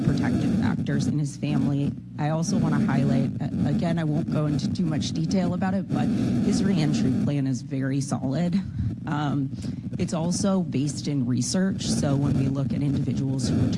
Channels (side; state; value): both; identical; correlation 1.00